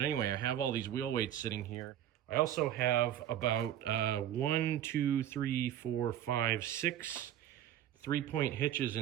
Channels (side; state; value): left; quieter; 11.3 dB